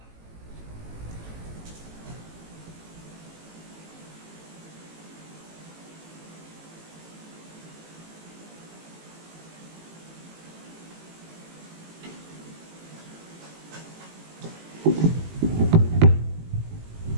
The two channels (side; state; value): left; late; 18 ms